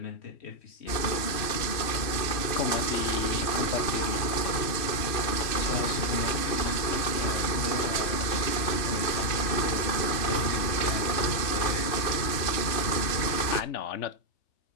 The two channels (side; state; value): right; late; 2.6 ms